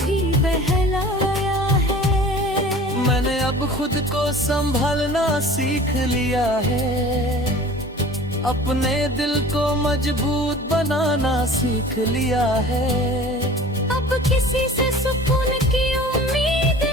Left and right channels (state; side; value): normal; both; correlation 0.43